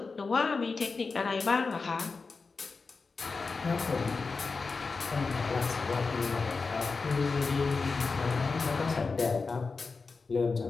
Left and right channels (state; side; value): quieter; right; 4.4 dB